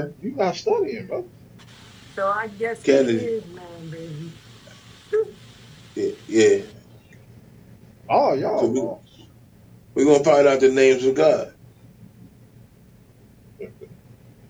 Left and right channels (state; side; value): identical; both; correlation 1.00